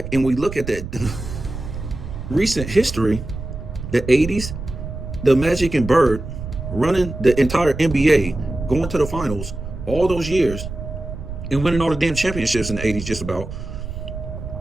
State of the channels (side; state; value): right; noise; rumble, 8 dB below the sound